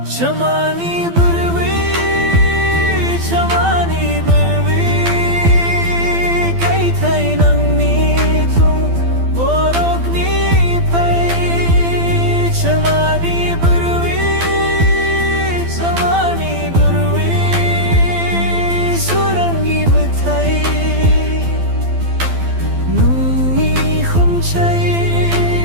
chamani burwi chamani burwi kai thai nang ni thung borok ni pai chamani burwi chamani burwi surangi buthai nungi khum chai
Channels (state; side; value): late; left; 12 ms